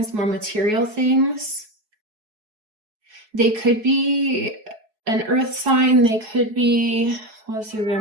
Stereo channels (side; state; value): left; late; 4.7 ms